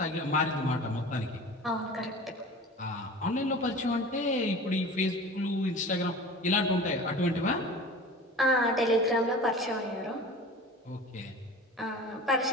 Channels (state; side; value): normal; both; correlation 0.38